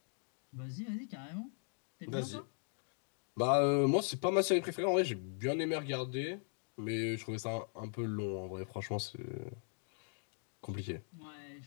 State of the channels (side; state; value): right; silent; 52 dB below the other